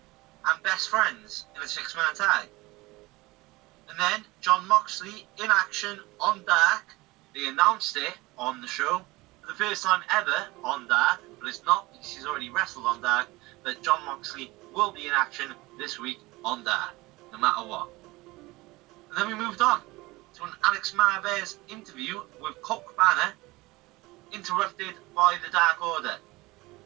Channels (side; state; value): left; quieter; 21.2 dB